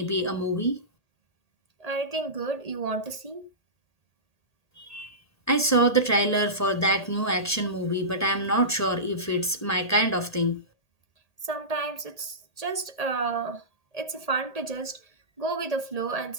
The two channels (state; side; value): late; right; 1.8 ms